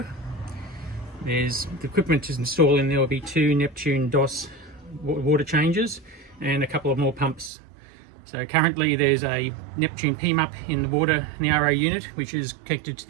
There's the equipment to install in there will be 2 Neptune DOS water changes and a couple of more pumps. So currently there's a Neptune PMUP in the water in the RO unit, which is connected to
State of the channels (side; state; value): left; drops out; at 7.5 s